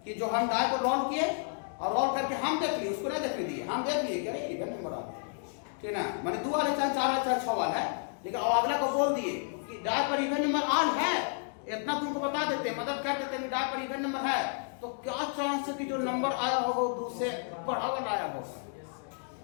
कि जो हम डाई को रोल किए और रोल करके हम देख लिए, उसको नहीं देखने दिए, हम देख लिए कि अरे इवन नंबर आ गया, ठीक है ना। मैंने 2 वाले चाहे 4 वाले चाहे 6 वाला है, लेकिन अब अगला को बोल दिए कि डाई पर इवन नंबर आल है, इतना तुमको बता देते, मदद कर देते हैं, डाई पर इवन नंबर है, तो क्या चांस है कि जो नंबर आया होगा वो दूसरे बड़ा वाला आया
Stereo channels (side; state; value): right; silent; 57 dB below the other